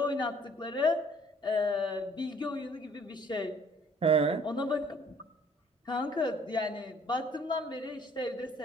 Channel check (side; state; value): both; normal; correlation 0.58